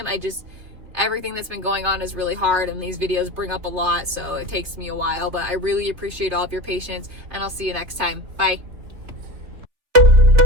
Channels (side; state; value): left; late; 3.6 ms